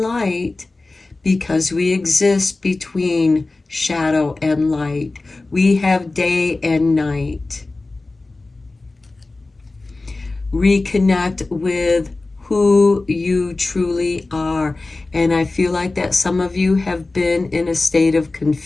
because we exist between shadow and light. We have day and night. Reconnect with who you truly are. And I feel like that some of you have been in a state of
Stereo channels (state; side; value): quieter; right; 3.3 dB